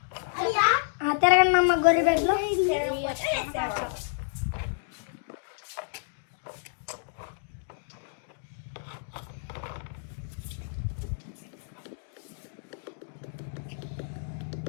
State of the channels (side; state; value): right; silent; digital silence